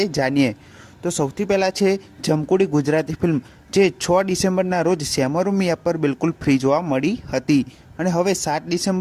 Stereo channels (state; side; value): identical; both; correlation 1.00